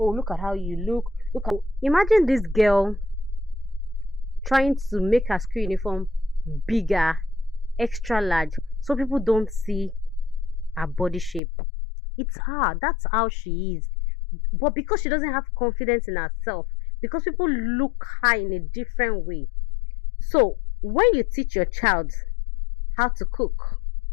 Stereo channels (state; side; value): drops out; right; at 11.4 s